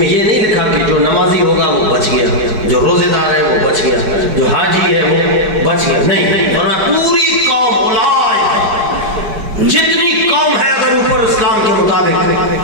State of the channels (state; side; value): late; left; 4.8 ms